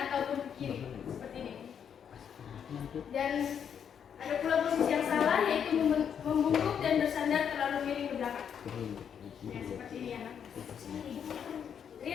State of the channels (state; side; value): quieter; right; 8.0 dB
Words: ataupun ke kiri seperti ini. Dan ada pula posisi yang salah yaitu membungkuk dan bersandar terlalu miring ke belakang. Ya, seperti ini ya.